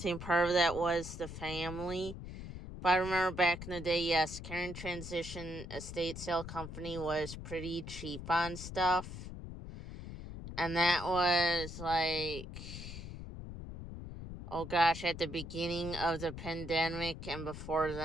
part of that was the family, But I remember back in the day, yes, Karen Transition Estate Sale Company was pretty cheap on stuff. And that was like, oh gosh, at the beginning of the pandemic and before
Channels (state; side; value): noise; left; rumble, 10 dB below the sound